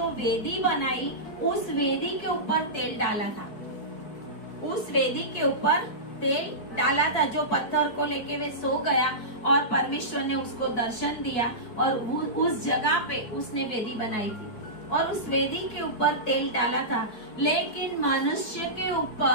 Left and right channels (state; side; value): late; right; 4.6 ms